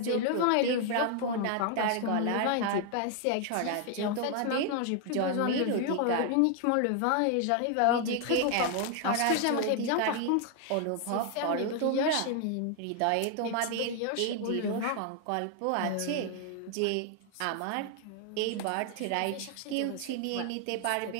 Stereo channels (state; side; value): different; both; correlation 0.00